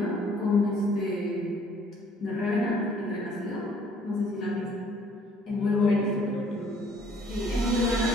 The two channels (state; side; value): normal; both; correlation 0.59